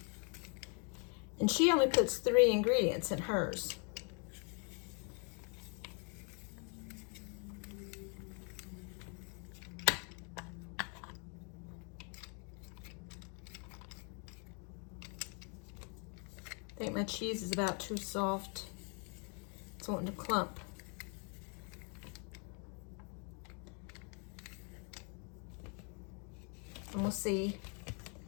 And she only puts 3 ingredients in hers. think my cheese is about too soft. It's wanting to clump. And we'll see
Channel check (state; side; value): quieter; right; 37.4 dB